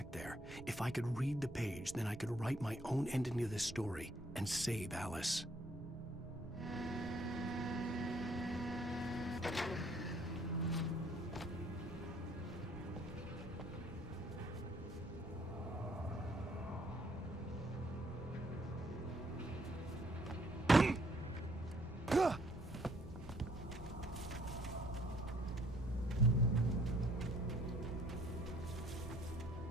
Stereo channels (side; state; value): right; noise; rumble, 16 dB below the sound